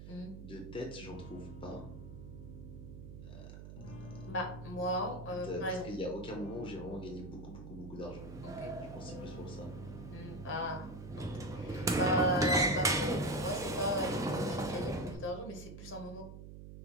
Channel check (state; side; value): noise; right; hum, 12 dB below the sound